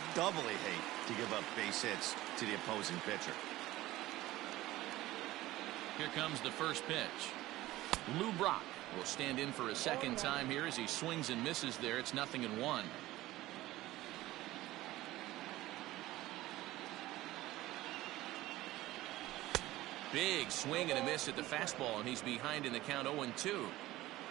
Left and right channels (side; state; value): left; quieter; 16.8 dB